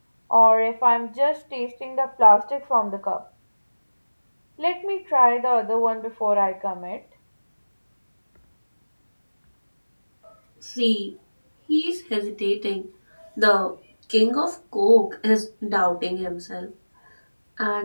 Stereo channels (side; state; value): both; inverted; correlation -1.00